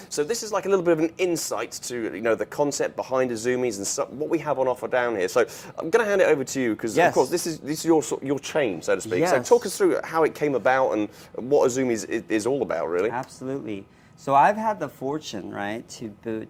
So this is like a little bit of an insight to the concept behind Izumis and what we have on offer down here. So I'm going to hand it over to you because, of course, this is your chain, so to speak. Yes. So talk us through how it came about and what Izumis is all about, really. Absolutely. So I've had the fortune, right,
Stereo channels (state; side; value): identical; both; correlation 1.00